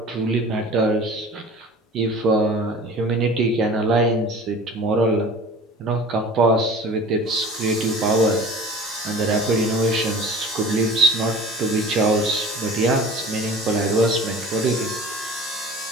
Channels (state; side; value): normal; both; correlation 0.42